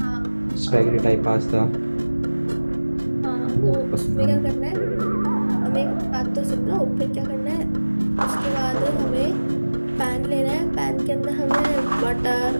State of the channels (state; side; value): inverted; both; correlation -1.00